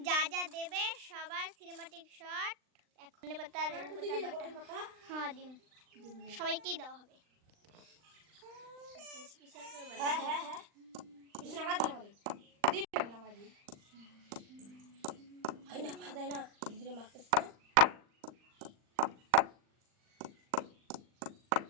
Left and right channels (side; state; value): left; late; 39 ms